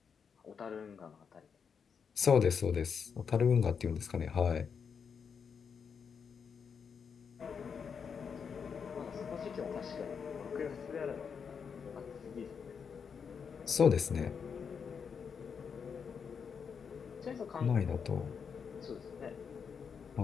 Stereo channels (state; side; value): quieter; right; 6.5 dB